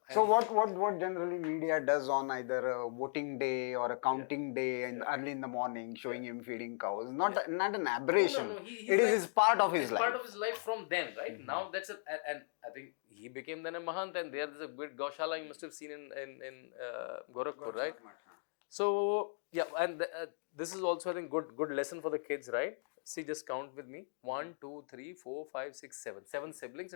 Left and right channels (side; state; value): right; silent; digital silence